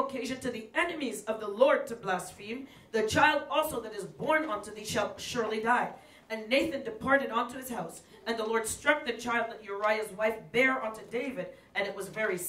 to the enemies of the Lord to blaspheme, the child also that is born unto thee shall surely die. And Nathan departed unto his house, and the Lord struck the child that Uriah's wife bare unto David, and it was very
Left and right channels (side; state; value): both; identical; correlation 1.00